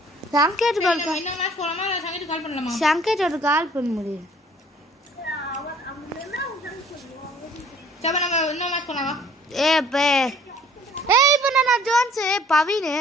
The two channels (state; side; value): normal; both; correlation 0.56